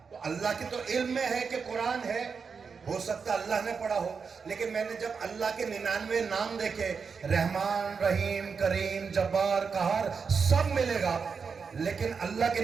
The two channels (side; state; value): left; quieter; 5.6 dB